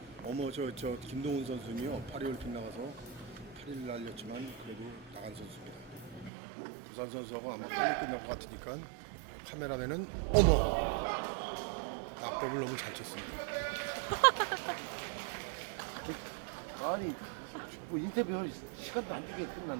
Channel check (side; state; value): left; drops out; at 6.3 s